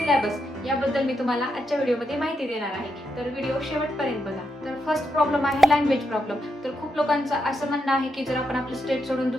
याबद्दल मी तुम्हाला आजच्या व्हिडिओमध्ये माहिती देणार आहे. तर व्हिडिओ शेवटपर्यंत बघा. तर फर्स्ट प्रॉब्लेम आहे लँग्वेज प्रॉब्लेम. तर खूप लोकांचं असं म्हणणं आहे की जर आपण आपलं स्टेट सोडून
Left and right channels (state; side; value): normal; both; correlation 0.82